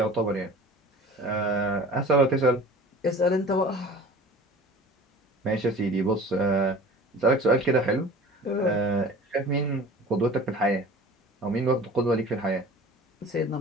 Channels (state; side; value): normal; both; correlation 0.42